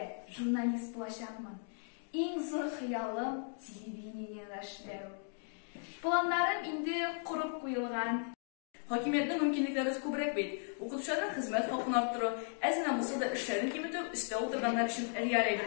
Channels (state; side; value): silent; right; 53 dB below the other